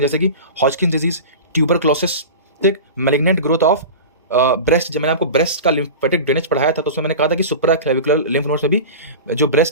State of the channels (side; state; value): both; inverted; correlation -0.31